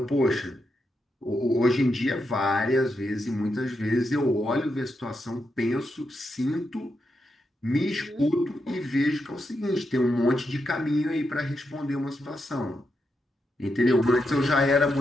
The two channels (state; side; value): normal; both; correlation 0.84